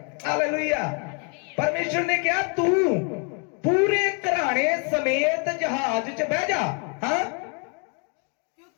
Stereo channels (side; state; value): right; quieter; 37.5 dB